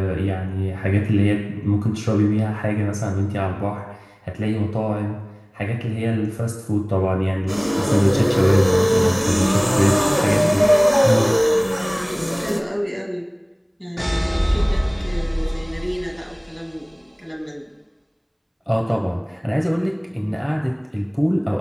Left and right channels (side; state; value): both; identical; correlation 1.00